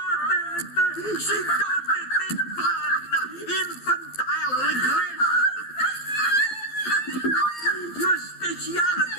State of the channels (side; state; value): right; late; 12 ms